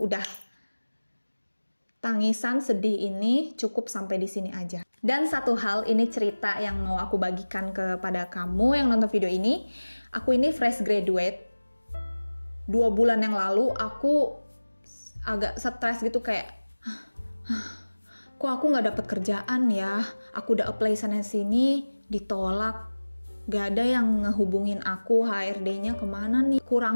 tangisan sedih ini cukup sampai di sini aja. Dan satu hal, ini cerita yang mau aku bagikan kepada kamu yang nonton video ini. Aku ini fresh graduate. 2 bulan yang lalu aku agak stres gitu kayak, kok aku gak dapet kerjaan ya? Aku udah apply sana-sini, ditolak. Gak ada yang ngehubungin aku, HRD-nya kemana nih?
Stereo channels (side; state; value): both; inverted; correlation -1.00